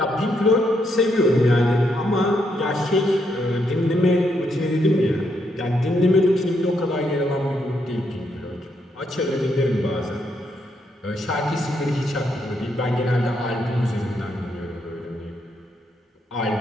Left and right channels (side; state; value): both; normal; correlation 0.77